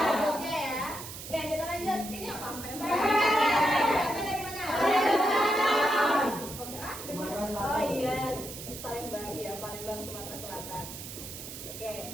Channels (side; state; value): right; noise; hiss, 10 dB below the sound